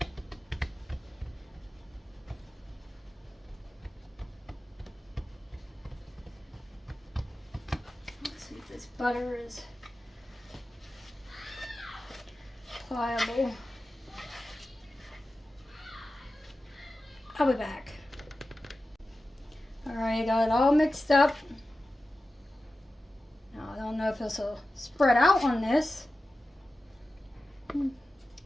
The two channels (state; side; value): normal; both; correlation 0.94